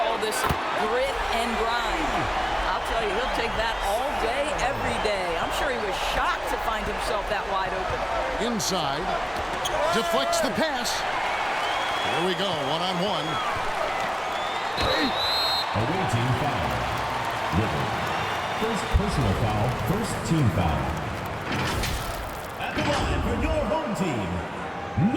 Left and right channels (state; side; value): identical; both; correlation 1.00